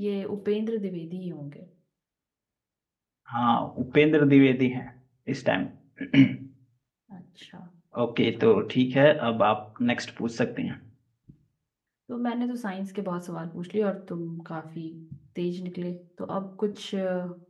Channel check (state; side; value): identical; both; correlation 1.00